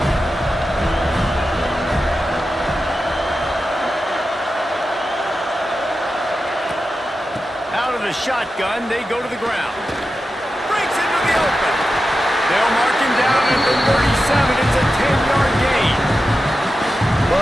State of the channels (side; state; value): both; normal; correlation 0.91